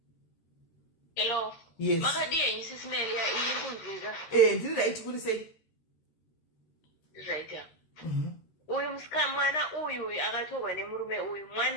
Hello. Yes. Makadiye SIS MELLY iri kunzwika. Ndiri right kuri sei? Right ya. Uyu mwana uyu akatorwa nemurume uyu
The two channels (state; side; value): late; right; 13 ms